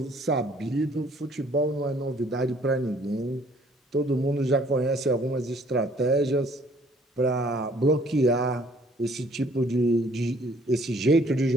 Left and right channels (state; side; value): normal; both; correlation 0.60